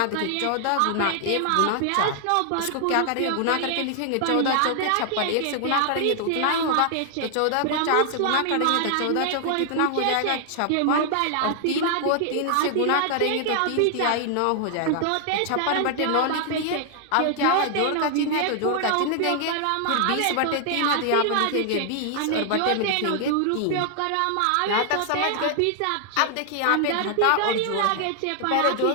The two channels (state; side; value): different; both; correlation 0.00